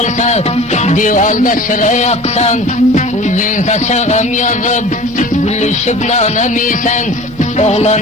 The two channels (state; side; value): normal; both; correlation 0.41